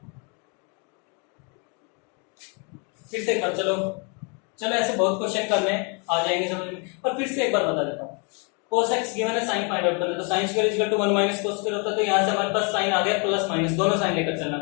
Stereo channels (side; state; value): right; quieter; 35.6 dB